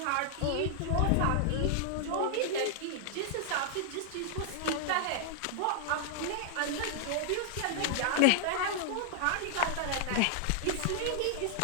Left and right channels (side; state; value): both; different; correlation -0.01